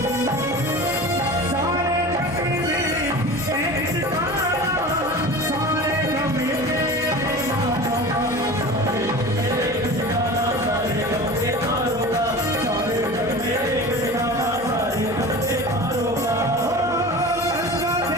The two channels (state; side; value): noise; right; hum, 17 dB below the sound